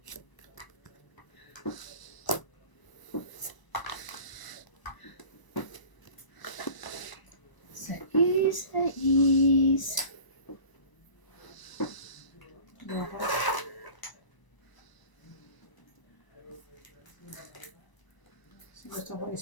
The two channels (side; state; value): right; late; 1.0 ms